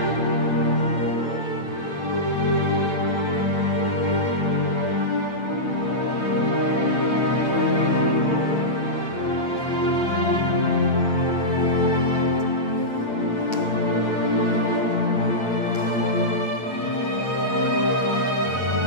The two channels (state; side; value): late; right; 8.8 ms